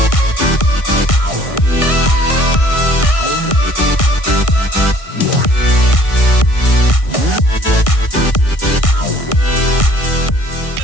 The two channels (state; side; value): late; right; 1.6 ms